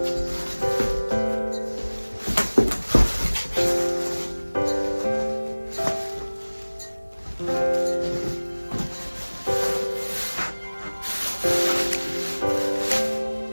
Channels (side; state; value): both; inverted; correlation -1.00